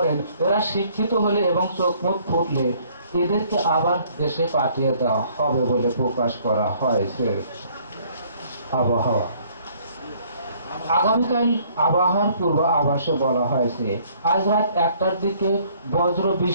এরা শিক্ষিত হলে এবং চোখ মুখ ফুটলে এদেরকে আবার দেশে পাঠিয়ে দেওয়া হবে বলে প্রকাশ করা হয়েছে। আবহাওয়া। আগামীকাল আবহাওয়ার পূর্ব আভাসে বলা হয়েছে, আজ রাত 1টার দিকে বজ্র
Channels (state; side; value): inverted; both; correlation -0.61